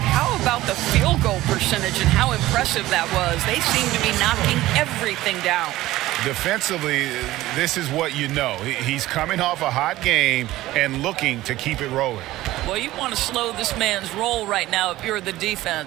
how about the field goal percentage and how impressive that was? They seem to be knocking everything down. Defensively, this is what you know. He's coming off a hot game and looking to keep it rolling. Well, you want to slow this man's roll right now if you're the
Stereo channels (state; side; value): quieter; left; 16.5 dB